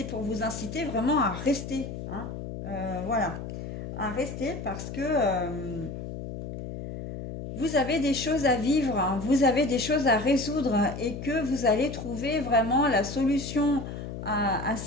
pour vous inciter vraiment à rester, hein. Voilà, à rester parce que vous avez des choses à vivre, hein, vous avez des choses à résoudre et que vous allez trouver vraiment la solution à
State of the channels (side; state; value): left; noise; hum, 8 dB below the sound